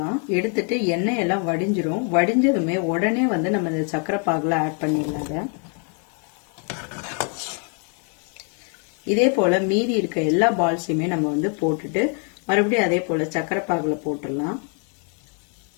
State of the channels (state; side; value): quieter; right; 38.9 dB